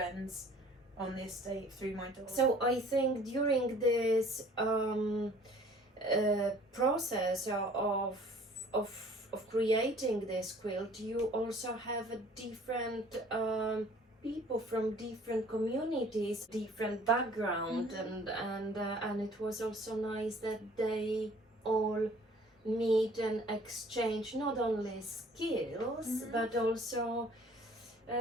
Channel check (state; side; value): normal; both; correlation 0.53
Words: on the estate through my dog. So I think during this process of creating this quilt, you also have a different people from different communities, different background, and it was also nice that they all meet and exchange not only skills but also